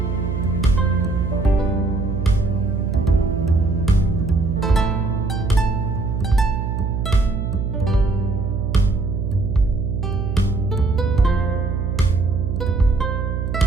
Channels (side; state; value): right; noise; hum, 2 dB below the sound